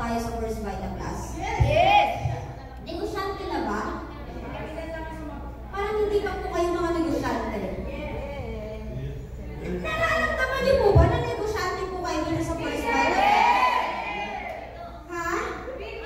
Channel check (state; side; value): identical; both; correlation 1.00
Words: tayo sa First Vita Plus? Yes! Negosyante na ba? Parang hindi pa po kayo mga negosyante. Nararamdaman niyo po ba na negosyante po kayo dito sa First Vita? Ha?